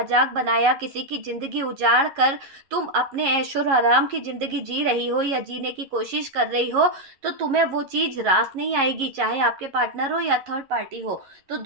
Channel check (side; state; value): left; late; 11 ms